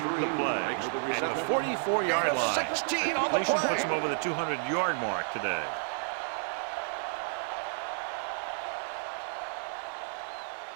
the play at the 44-yard line. The completion puts him over the 200-yard mark today.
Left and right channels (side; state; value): left; silent; 57 dB below the other